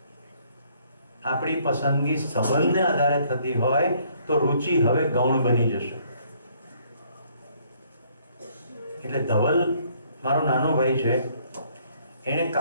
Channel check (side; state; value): both; inverted; correlation -0.65